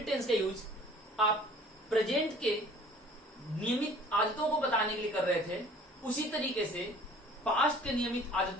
टेंस का यूज आप प्रेजेंट के नियमित आदतों को बताने के लिए कर रहे थे, उसी तरीके से पास्ट के नियमित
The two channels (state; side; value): normal; both; correlation 0.50